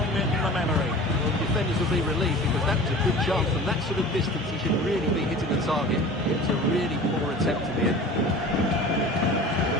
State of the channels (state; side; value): normal; both; correlation 0.39